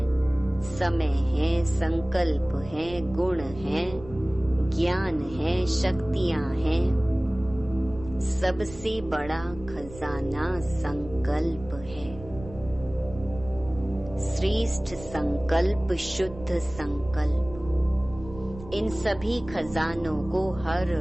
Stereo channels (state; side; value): noise; right; rumble, 16 dB below the sound